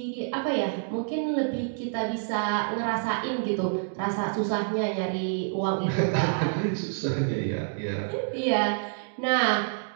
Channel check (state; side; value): silent; left; digital silence